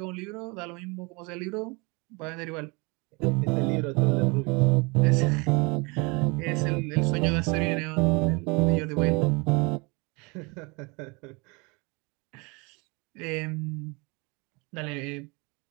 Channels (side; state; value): left; quieter; 28.3 dB